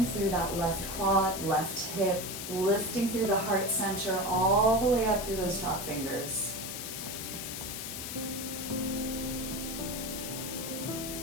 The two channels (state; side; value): noise; left; hiss, 6 dB below the sound